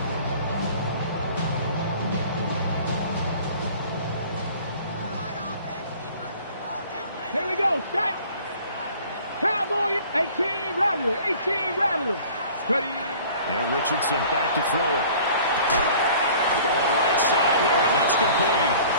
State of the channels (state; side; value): inverted; both; correlation -0.48